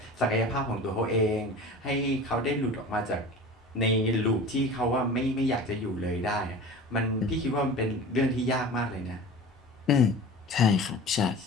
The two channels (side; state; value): both; normal; correlation 0.37